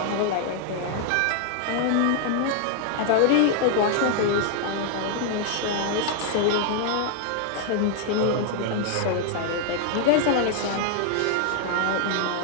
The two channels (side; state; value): both; different; correlation 0.00